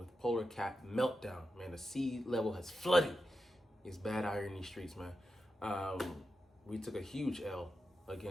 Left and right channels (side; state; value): both; normal; correlation 0.89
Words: polar cap meltdown, man. The sea level has flooded. It's bad out here in these streets, man. We took a huge L